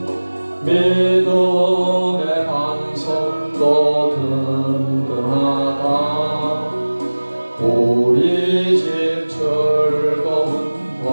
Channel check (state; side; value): inverted; both; correlation -1.00